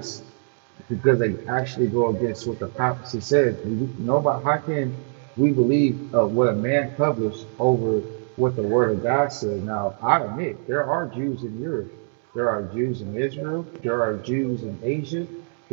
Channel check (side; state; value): left; silent; digital silence